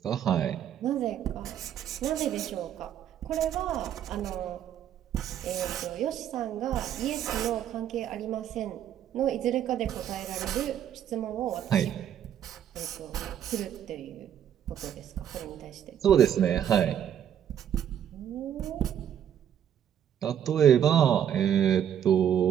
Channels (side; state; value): left; quieter; 9.7 dB